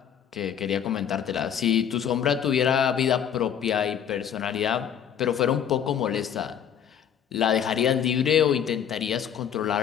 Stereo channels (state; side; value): quieter; right; 8.8 dB